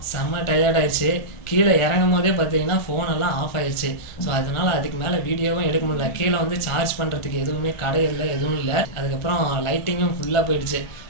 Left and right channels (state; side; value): late; right; 1.4 ms